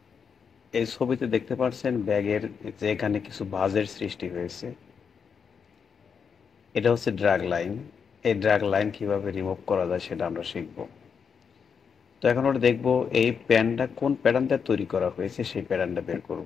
এই ছবিতে দেখতে পাচ্ছেন ব্যাগের যে এখানে কিছু ভাঁজের সৃষ্টি হয়েছে, এটা হচ্ছে ড্র্যাগ লাইন। এই ড্র্যাগ লাইন কিভাবে রিমুভ করা যায় সেটা আমরা শিখবো। তো এখন আমরা দেখবো এই প্যানটা কোন প্যাটার্নটা তৈরি করা হয়েছে, সেই প্যাটার্নটা বের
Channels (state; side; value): quieter; right; 6.4 dB